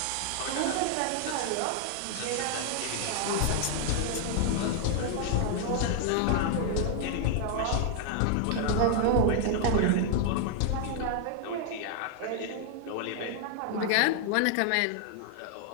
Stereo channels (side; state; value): both; different; correlation 0.00